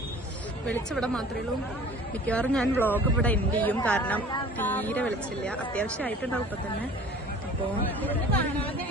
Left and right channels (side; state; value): both; normal; correlation 0.46